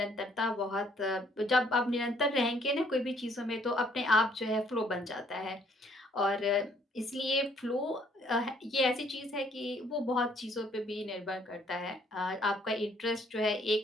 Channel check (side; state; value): both; normal; correlation 0.64